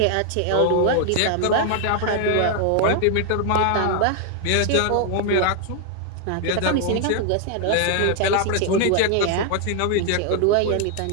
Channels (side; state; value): both; different; correlation 0.00